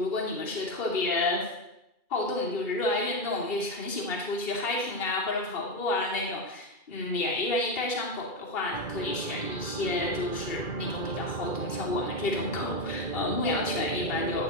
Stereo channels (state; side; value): late; right; 2.3 ms